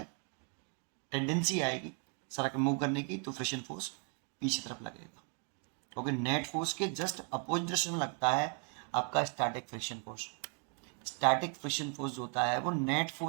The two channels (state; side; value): quieter; left; 38.7 dB